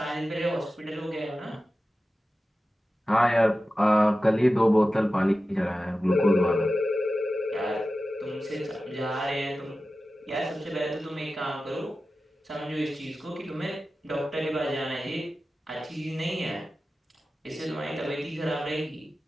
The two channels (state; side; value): normal; both; correlation 0.94